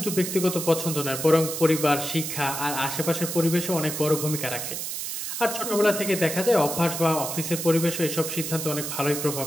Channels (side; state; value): right; noise; hiss, 5 dB below the sound